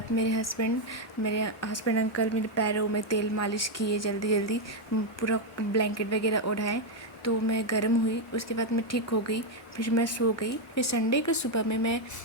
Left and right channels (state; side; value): normal; both; correlation 0.03